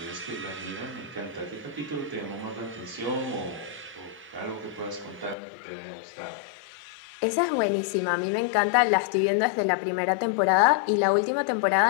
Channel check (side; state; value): right; drops out; at 5.4 s